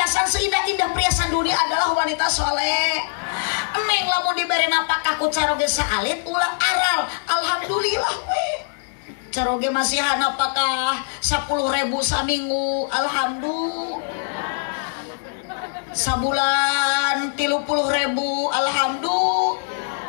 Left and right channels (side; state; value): right; silent; digital silence